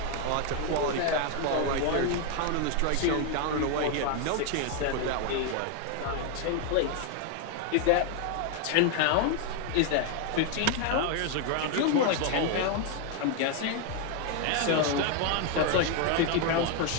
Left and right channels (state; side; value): different; both; correlation 0.01